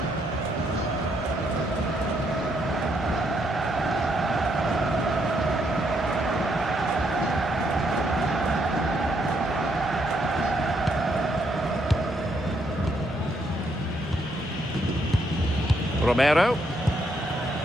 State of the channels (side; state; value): both; normal; correlation 0.74